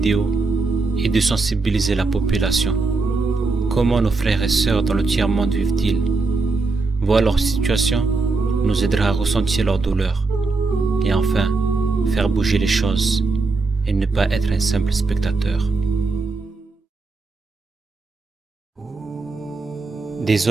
est de sensibiliser la population. Comment nos frères et sœurs dans le tiers-monde vivent-ils? Voir leur situation nous aidera à ressentir leur douleur et enfin faire bouger les choses et ne pas être un simple spectateur. Des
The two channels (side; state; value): left; quieter; 3.8 dB